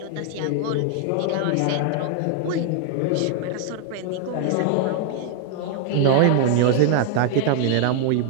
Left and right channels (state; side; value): different; both; correlation 0.00